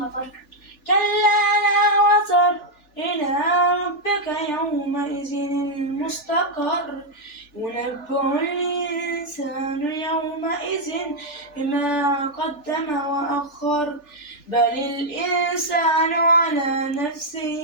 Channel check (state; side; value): late; right; 3.4 ms